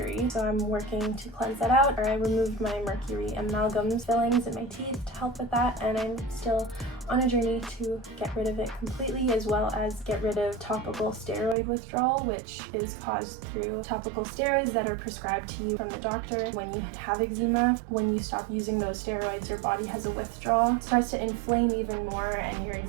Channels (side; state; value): left; drops out; at 11.6 s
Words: So I'm working to cleanse that out, or I removed my mercury amalgams fillings in my teeth to help with that, and I'm still on a journey to get rid of it completely, as well as get rid of topical steroid withdrawal, which is caused through topical steroids that are prescribed to you from the doctor when you have eczema. When you stop using those steroids, your body has a withdrawal, starts to inflame even more, and your